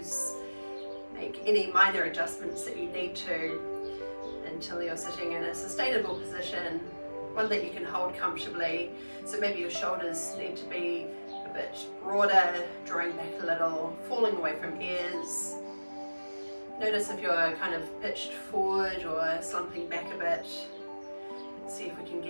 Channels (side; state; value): both; inverted; correlation -1.00